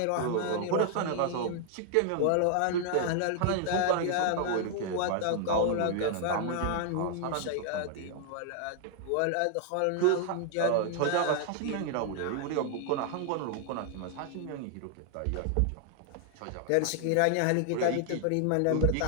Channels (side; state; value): both; different; correlation 0.00